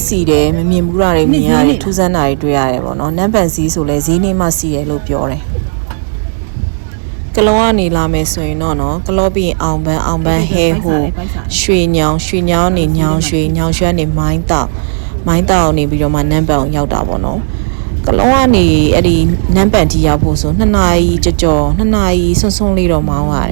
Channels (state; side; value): silent; left; digital silence